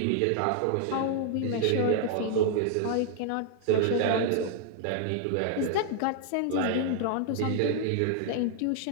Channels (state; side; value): different; both; correlation 0.00